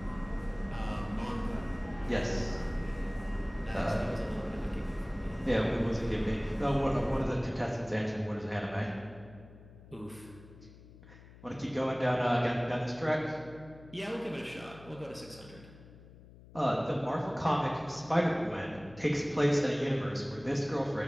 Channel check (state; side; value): noise; left; hum, 20 dB below the sound